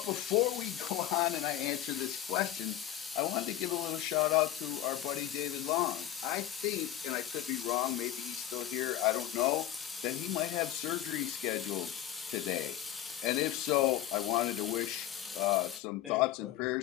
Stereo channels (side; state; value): right; quieter; 12.6 dB